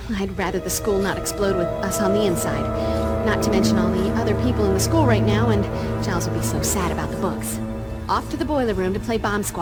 I'd rather the school not explode with us on the inside. Not to mention all the other people in the school right now, and Giles would be so sad about the books. Off to the boiler room to play Bomb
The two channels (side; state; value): both; identical; correlation 1.00